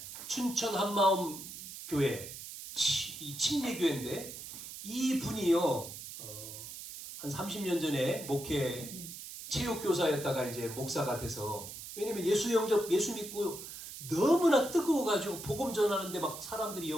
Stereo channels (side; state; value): right; noise; hiss, 11 dB below the sound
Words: 춘천 한마음 교회, 이 침례교회인데 이분이요, 한 30년 전에 체육교사였다가 이제 목사가 돼서, 왜냐면 예수 믿고 너무나 뜨거워가지고 복음 전하는데 막 사람들이